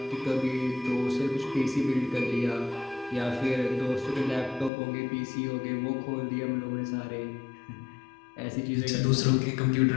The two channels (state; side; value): drops out; right; at 4.7 s